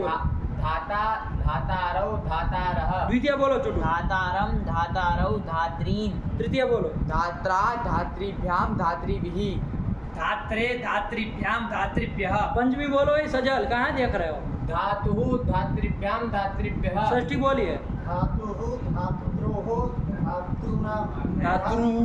धाता धातारौ धातारः। द्वितीय बोलो चुटू। धातारम धातारौ धात्रीन्। तृतीय बोलो। धात्रा धात्रीभ्याम धात्रीभिः। धात्रे धात्रीभ्याम धात्रीभ्यः। पंचमी बोलो, ये सजल कहाँ देख रहे हो? धातुः धात्रीभ्याम धात्रीभ्यः। षष्ठी बोलिए। धातुः धातुद्रोः धातृ।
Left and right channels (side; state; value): both; identical; correlation 1.00